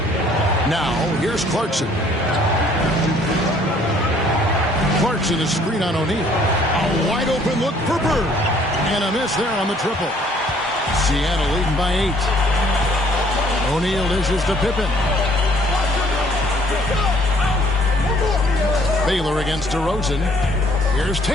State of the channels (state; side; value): normal; both; correlation 0.60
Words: Now, here's Clarkson. Clarkson is screen on O'Neal. A wide open look for Bird. And a miss there on the triple. Seattle leading by 8. O'Neal dishes to Pippen. Baylor against DeRozan. Here's